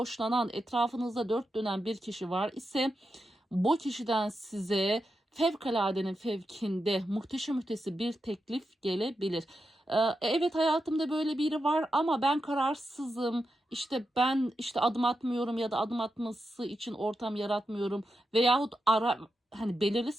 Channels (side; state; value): both; normal; correlation 0.88